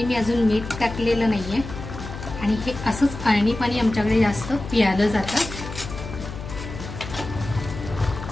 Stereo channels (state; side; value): noise; left; hum, 10 dB below the sound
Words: मी अजून मीठ टाकलेलं नाहीये, आणि हे असंच अळणी पाणी आमच्याकडे जास्त पियालं जातं।